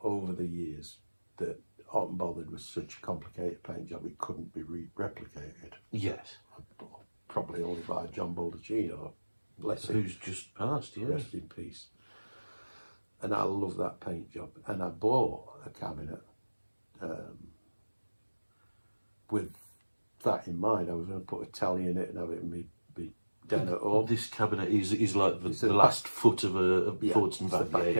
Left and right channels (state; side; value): inverted; both; correlation -1.00